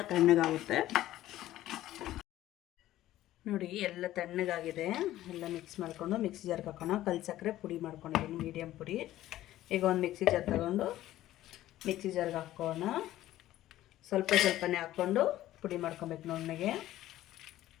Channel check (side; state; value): right; quieter; 14.3 dB